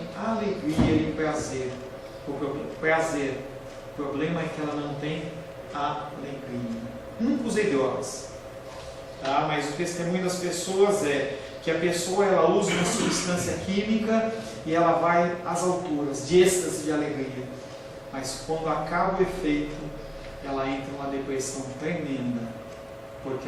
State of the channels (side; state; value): both; identical; correlation 1.00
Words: alegria e prazer. O problema é que ela não tem alegria. Nunca usei drogas, tá? Mas o testemunho das pessoas é que a pessoa ela usa uma substância química e ela vai às alturas de êxtase de alegria. Mas quando acaba o efeito, ela entra numa depressão tremenda, porque